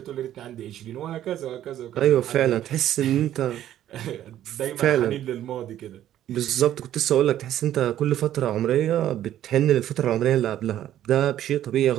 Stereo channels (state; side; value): quieter; left; 12.0 dB